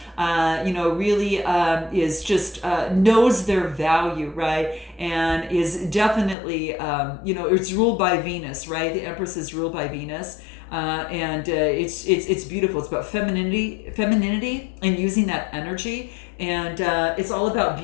really is just knows their value, right? And is definitely, it's ruled by Venus, right? The Empress is ruled by Venus. And it's beautiful. It's about femininity and using that energy. And it's all about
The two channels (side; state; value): right; drops out; at 6.4 s